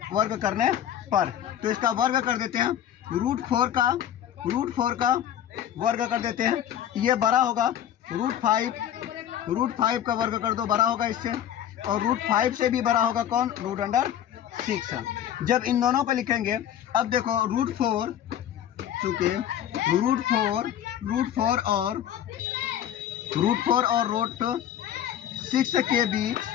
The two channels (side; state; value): right; quieter; 10.6 dB